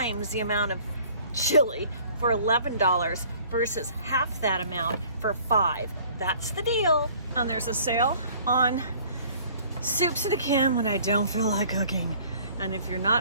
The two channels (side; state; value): both; inverted; correlation -0.53